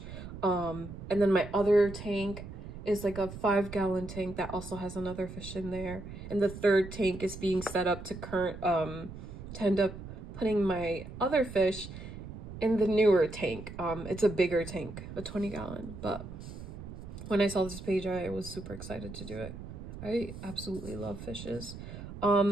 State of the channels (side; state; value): right; noise; rumble, 11 dB below the sound